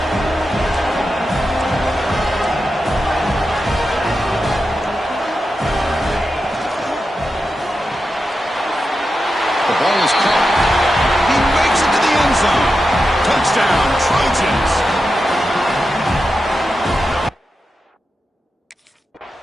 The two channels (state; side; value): normal; both; correlation 0.90